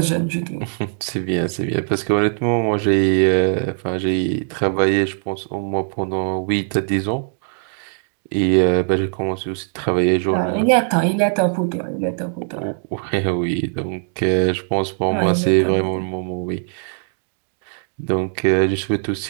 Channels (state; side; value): silent; left; 65 dB below the other